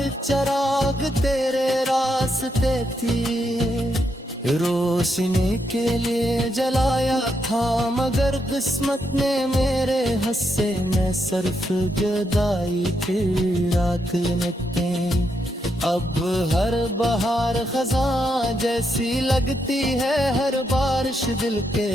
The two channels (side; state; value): both; normal; correlation 0.80